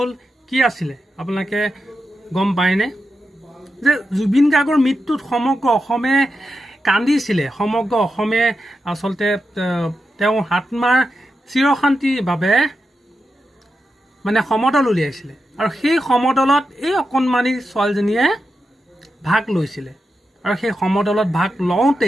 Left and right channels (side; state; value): both; normal; correlation 0.88